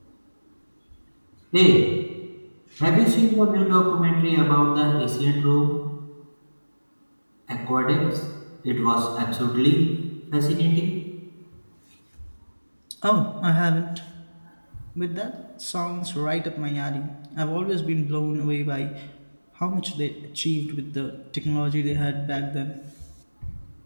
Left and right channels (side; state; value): both; inverted; correlation -1.00